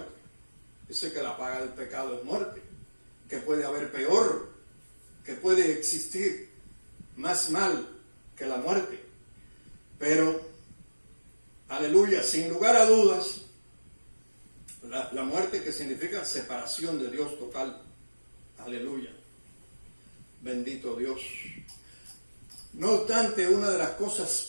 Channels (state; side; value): inverted; both; correlation -1.00